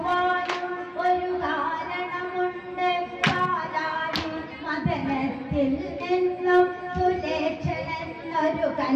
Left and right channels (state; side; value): identical; both; correlation 1.00